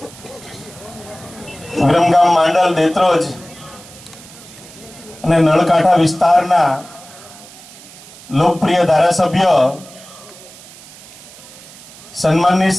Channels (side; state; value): right; noise; hiss, 19 dB below the sound